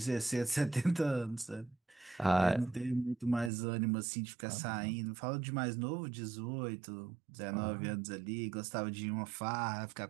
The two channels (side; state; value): left; drops out; at 3.5 s